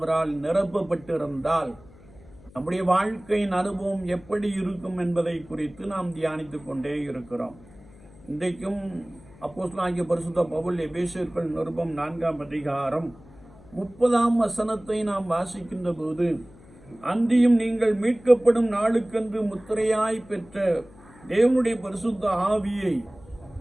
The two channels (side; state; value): left; noise; hum, 23 dB below the sound